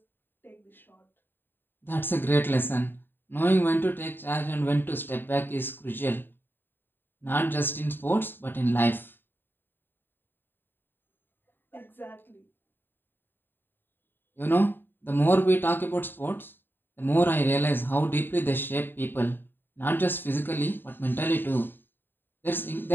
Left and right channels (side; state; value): right; late; 0.096 ms